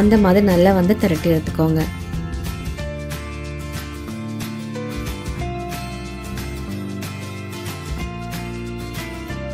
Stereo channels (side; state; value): both; identical; correlation 1.00